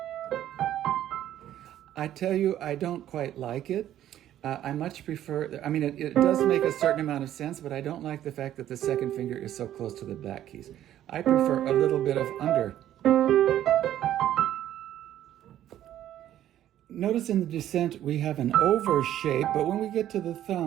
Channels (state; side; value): quieter; left; 12.0 dB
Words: I tell you, I don't quite like it. I much prefer, I mean, it does make a certain amount of sense, but I don't like the fact that the second finger is so close to the back keys. I prefer a little bit of under. Notice in the descent we have an over shape, but when we get to the